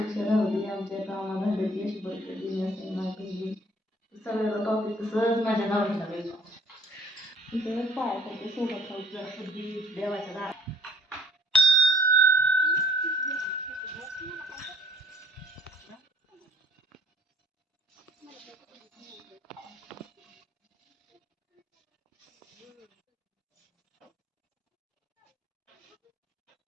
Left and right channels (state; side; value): normal; both; correlation 0.58